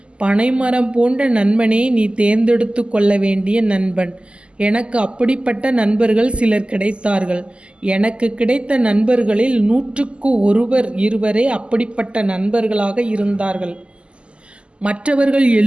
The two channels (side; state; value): left; late; 0.053 ms